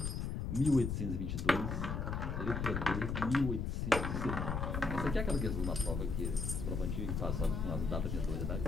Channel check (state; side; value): noise; left; rumble, 2 dB below the sound